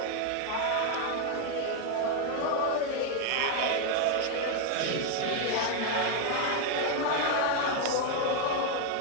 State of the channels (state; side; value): different; both; correlation 0.01